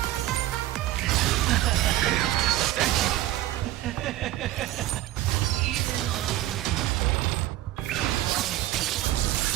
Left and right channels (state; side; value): quieter; left; 15.1 dB